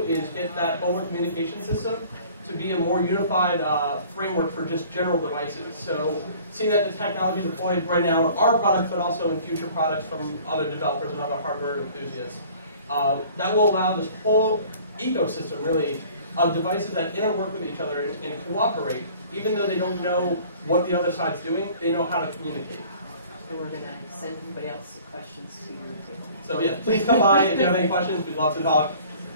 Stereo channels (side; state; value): both; inverted; correlation -0.50